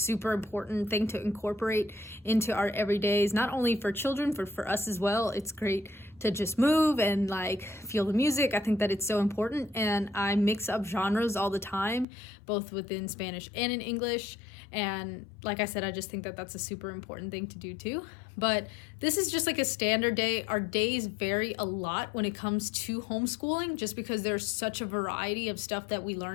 important thing to incorporate into our everydays, not only for children, but for us as well. It's great to just move and like feel the music. I think that it's so important, and I mix up genres all the time, both within Spanish and in English. And like I said, I just think that that's a super important thing to do too. But this is just like a standard day. Our days vary a lot when it comes to homeschooling, just because there's such a variety of stuff that we learn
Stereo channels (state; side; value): drops out; right; at 12.1 s